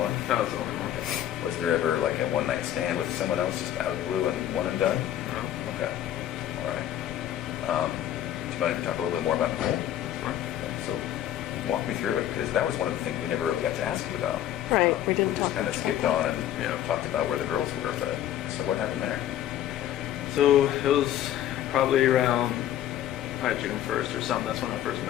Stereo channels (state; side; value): quieter; right; 11.8 dB